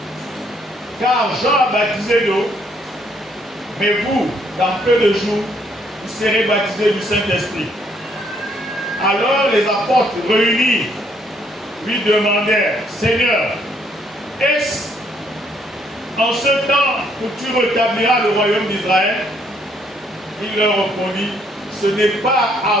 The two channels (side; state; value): both; normal; correlation 0.68